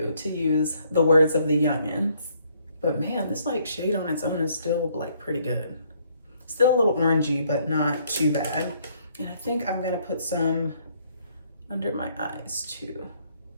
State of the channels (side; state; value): both; inverted; correlation -0.67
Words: use the words of the youngins. But man, this like shade on its own is still like pretty good. Still a little orangey, but not too bad. And I think I'm gonna put some under my eyes too.